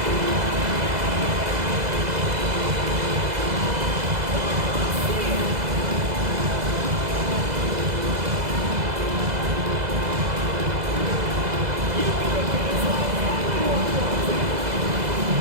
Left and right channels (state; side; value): late; left; 2.0 ms